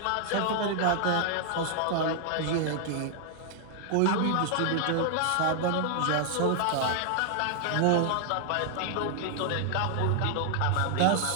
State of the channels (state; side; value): different; both; correlation 0.00